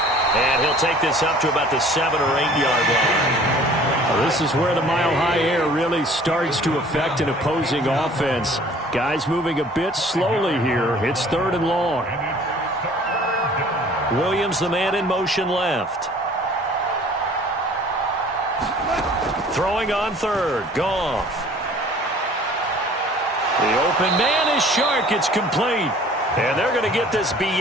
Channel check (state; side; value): normal; both; correlation 0.51